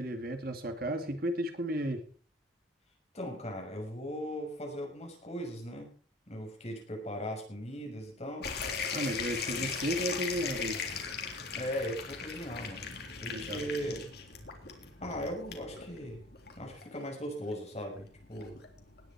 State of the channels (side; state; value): both; normal; correlation 0.45